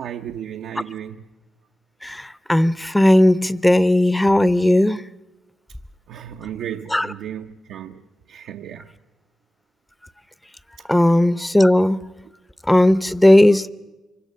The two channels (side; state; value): both; normal; correlation 0.98